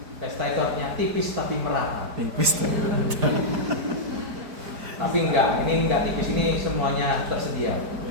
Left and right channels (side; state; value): left; late; 4.9 ms